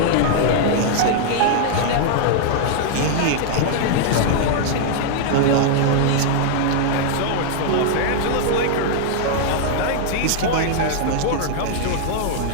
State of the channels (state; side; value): different; both; correlation -0.01